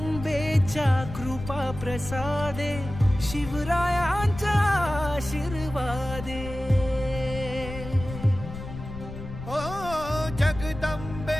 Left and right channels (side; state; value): left; noise; rumble, 10 dB below the sound